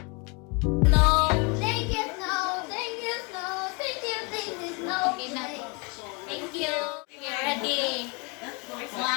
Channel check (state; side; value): quieter; right; 31.1 dB